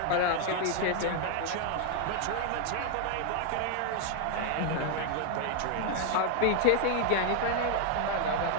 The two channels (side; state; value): both; different; correlation 0.00